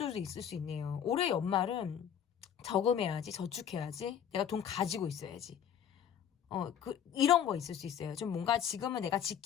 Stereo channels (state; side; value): quieter; right; 8.9 dB